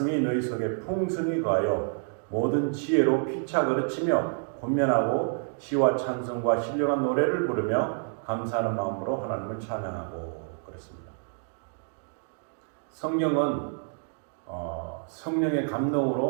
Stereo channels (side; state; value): left; silent; 59 dB below the other